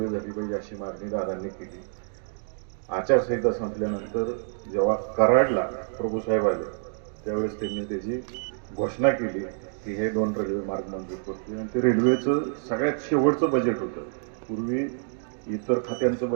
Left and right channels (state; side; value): silent; left; digital silence